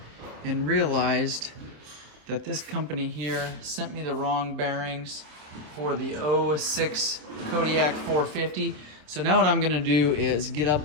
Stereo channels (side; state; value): left; late; 27 ms